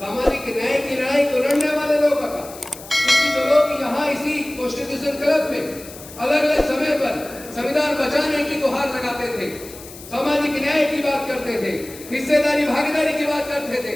न्याय की लड़ाई को लड़ने वाले लोगों का, क्योंकि जो लोग यहाँ इसी कॉन्स्टिट्यूशन क्लब में अलग अलग समय पर संविधान बचाने की गुहार लगाते थे, सामाजिक न्याय की बात करते थे, हिस्सेदारी भागीदारी की बात करते थे,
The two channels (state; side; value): noise; left; hiss, 16 dB below the sound